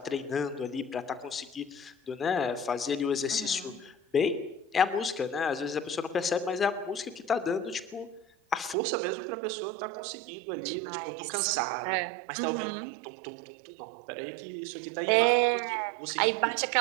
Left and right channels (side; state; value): left; drops out; at 8.8 s